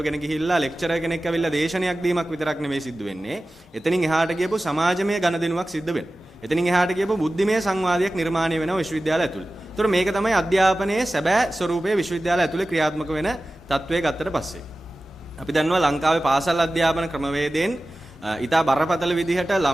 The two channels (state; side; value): normal; both; correlation 0.96